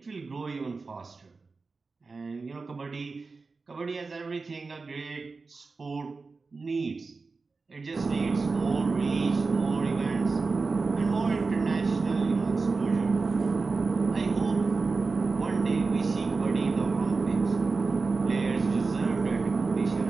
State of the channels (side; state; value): left; quieter; 4.1 dB